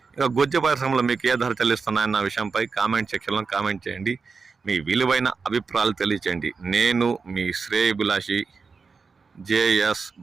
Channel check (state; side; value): quieter; left; 4.9 dB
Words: ఇక గుజ్జ పరిశ్రమలో మీకు ఏ ధర చెల్లిస్తున్నాయన్న విషయంపై కామెంట్ సెక్షన్లో కామెంట్ చేయండి. మీ విలువైన అభిప్రాయాలు తెలియచేయండి. నేను మీ శ్రేయభిలాషి జేఎస్